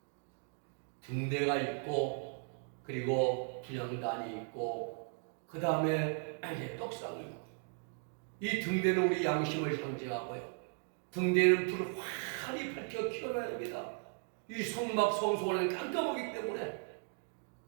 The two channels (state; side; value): silent; left; 53 dB below the other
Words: 등대가 있고 그리고 분향단이 있고 그 다음에 떡상이 있고 이 등대는 우리 양심을 상징하고요. 등대는 불을 환히 밝혀 켜놔야 됩니다. 이 성막 성소는 깜깜하기 때문에